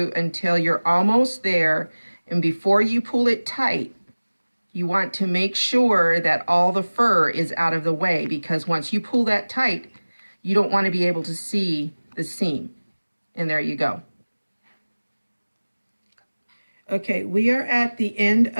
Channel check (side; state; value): both; inverted; correlation -1.00